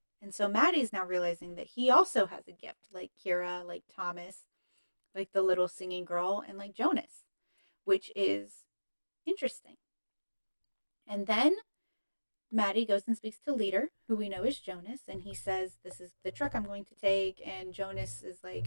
And so Matty's now realizing that he also has a gift, like Kira, like Thomas, like the little singing girl, and like Jonas, which is interesting. And then Matty goes and speaks to Leader, who we know is Jonas, and he says, this is the truck I'm going to take. And Jonas is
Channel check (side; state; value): both; inverted; correlation -1.00